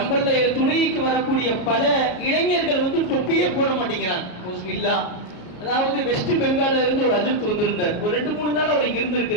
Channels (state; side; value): late; right; 34 ms